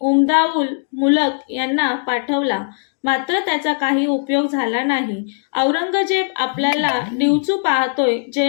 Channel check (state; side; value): silent; right; digital silence